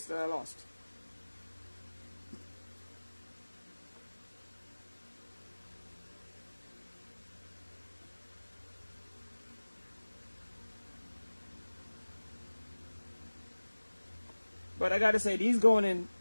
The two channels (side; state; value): both; inverted; correlation -1.00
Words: that I lost. But I gotta say, these